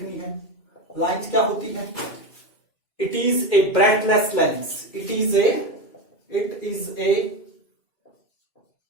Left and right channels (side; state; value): right; late; 2.5 ms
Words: है। लाइंस क्या होती है? It is a breadthless length. It is a